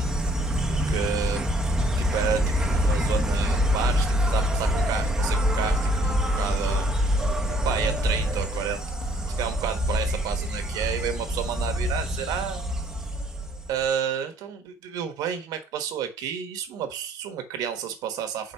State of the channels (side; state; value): both; normal; correlation 0.61